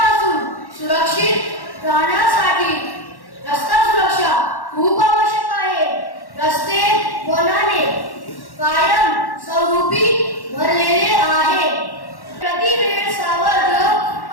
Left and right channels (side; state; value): right; late; 1.1 ms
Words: सुरक्षित राहण्यासाठी रस्ता सुरक्षा खूप आवश्यक आहे। रस्ते वनाने कायम स्वरूपी भरलेले आहे। प्रतिवेळ सावध